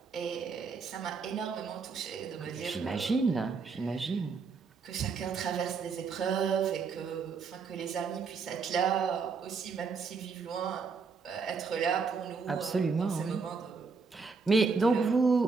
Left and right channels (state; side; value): quieter; left; 5.0 dB